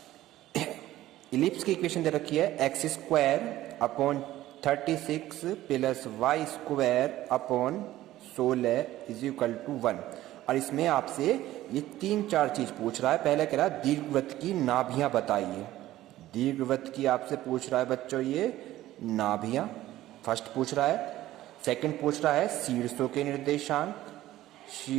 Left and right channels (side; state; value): left; quieter; 14.9 dB